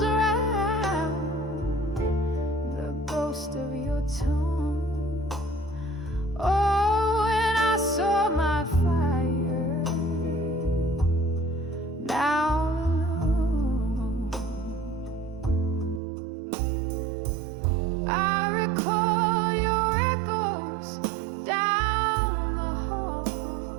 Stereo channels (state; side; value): drops out; left; at 16.0 s